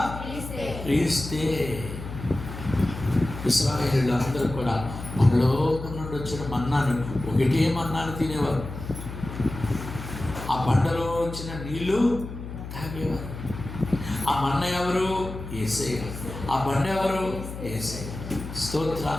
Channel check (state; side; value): noise; left; hum, 10 dB below the sound